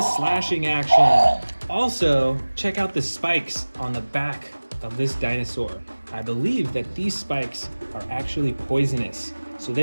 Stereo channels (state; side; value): inverted; both; correlation -1.00